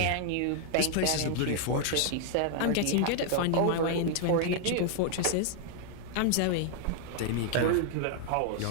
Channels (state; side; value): different; both; correlation 0.00